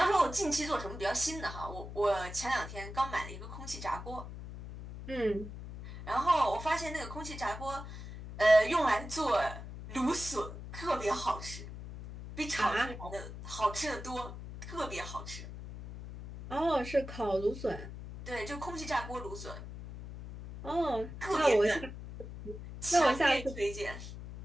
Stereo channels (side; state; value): left; noise; hum, 11 dB below the sound